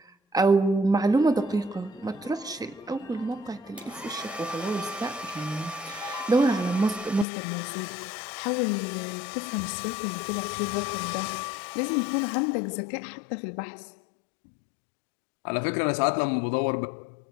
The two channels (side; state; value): right; drops out; at 7.2 s